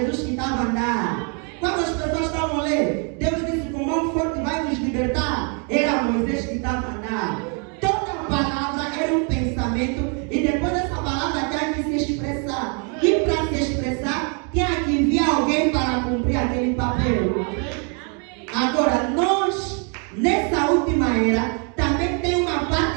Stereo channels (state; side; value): quieter; left; 38.4 dB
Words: que estava a andar. Quando as pessoas estavam lendo, Deus disse, com mão forte vai nos libertar. Era Moisés que estava a andar. Toda palavra era um pensamento e depois dessa palavra tinha que se expressar. E para se expressar, tinha que enviar alguém para cumprir aquele papel. Agora, nós, nessa última era, também tem uma